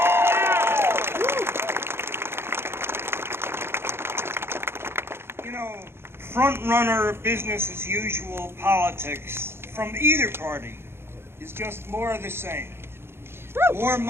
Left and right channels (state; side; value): late; left; 0.12 ms